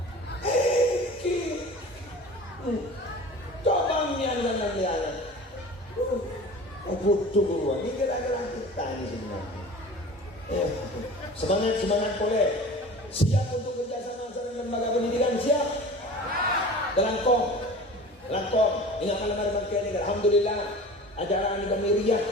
cobanya dan butuh keluar, ini kira-kira kita ini sebenarnya. Semangat boleh. Siap untuk kerjasama dengan lembaga pendidikan, siap. Langkong. Ingat malam hari ini, alhamdulillah ajaran kami riak,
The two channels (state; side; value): normal; both; correlation 0.39